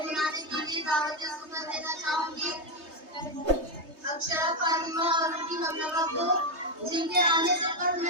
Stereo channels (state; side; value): late; left; 3.2 ms